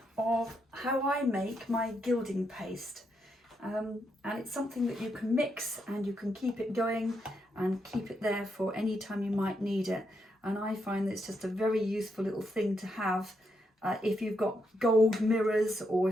of how I make my gilding paste. And it's something that you can mix and you can keep it going and keep it there for any time you might need it. And I find that it's just a very useful little thing to have if you've got gold mirrors, or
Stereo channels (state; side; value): normal; both; correlation 0.80